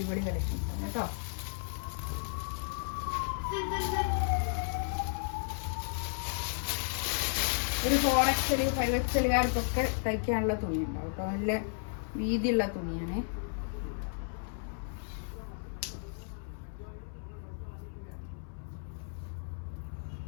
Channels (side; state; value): right; silent; 55 dB below the other